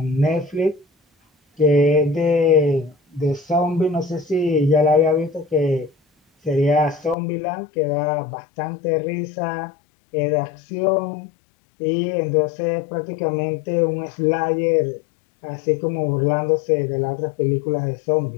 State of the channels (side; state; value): right; drops out; at 7.2 s